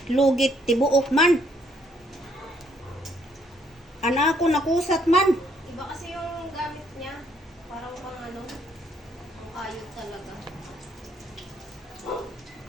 tibuok man. Ana ako nakusat man. Iba kasi yung gamit niya. Parang pang ano, ang kayod talaga.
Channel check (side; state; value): both; normal; correlation 0.69